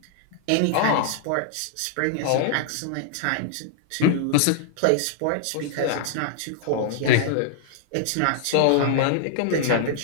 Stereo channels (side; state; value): both; different; correlation -0.01